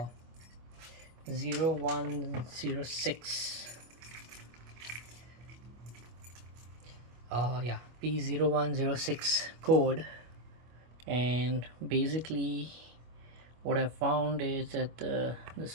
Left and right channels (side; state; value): left; late; 25 ms